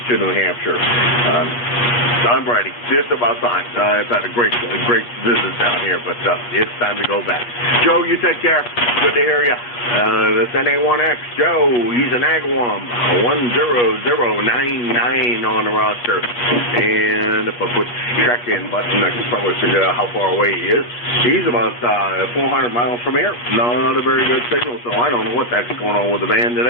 New Hampshire. I'm ready. It's about time. I've had a great visit down here, but it's time to go back. Joe, you take care. Good to hear you. That's NA1X. Joe, he's an Agawam. 10099 on the roster. And if I put check-in button, I can probably figure out how far away he is. He's about 400 miles from here. Not a very good signal, so I don't know what that's going on with the van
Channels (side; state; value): right; late; 8.5 ms